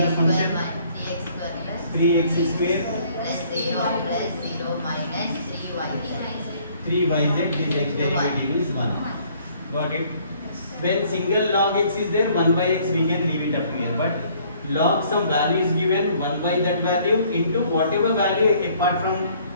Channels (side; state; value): both; inverted; correlation -0.60